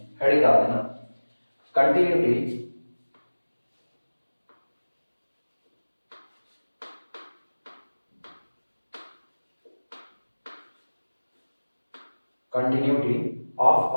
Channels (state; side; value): inverted; both; correlation -1.00